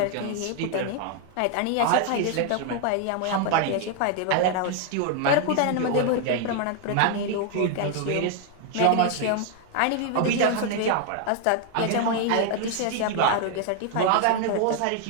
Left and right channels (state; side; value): different; both; correlation 0.00